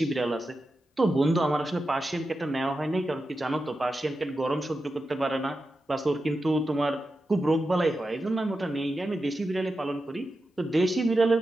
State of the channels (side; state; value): both; normal; correlation 0.90